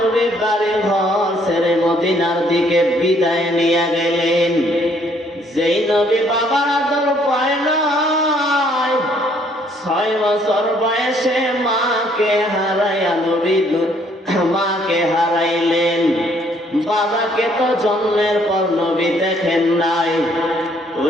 বাড়ি ঘর ছেড়ে মদিনার দিকে বিদায় নিয়ে গেলেন। যেই নবী বাবার আদর পায় নাই, 6 বছর বয়সে মাকে হারাইয়া নবী মাকে হারাইলেন। বাবাকে তো জন্মের পর নবী দেখেন নাই।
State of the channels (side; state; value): both; normal; correlation 0.65